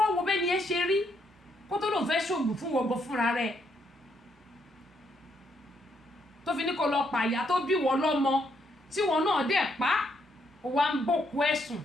wo bẹ́ẹ̀ ni ẹ ṣe rí kó tó lòun fẹ́ ṣòògùn fún wọgbọ fúnra rẹ̀ tó fi ní kó lọ pàyà tó bí wọ́n lọ́mọ tí wọn náà dẹ̀ pa ó wá ń bòkú ẹ̀sùn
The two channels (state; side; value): normal; both; correlation 0.75